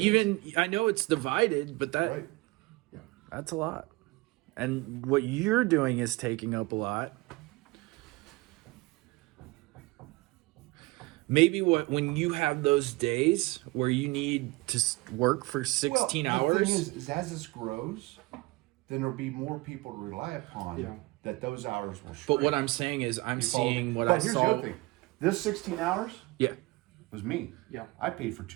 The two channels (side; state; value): left; quieter; 22.4 dB